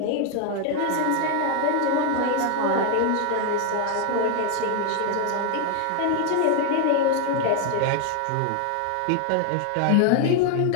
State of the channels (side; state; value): both; different; correlation 0.00